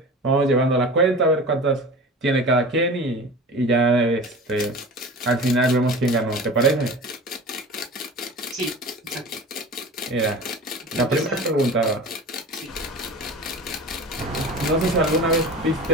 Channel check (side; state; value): both; normal; correlation 0.35